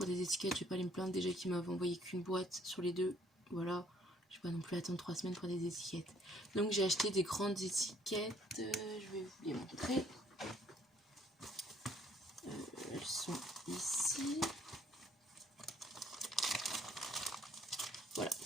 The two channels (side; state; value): both; normal; correlation 0.63